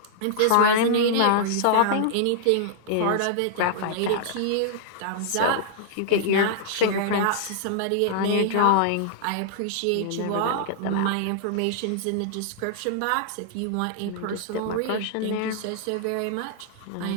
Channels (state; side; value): different; both; correlation -0.01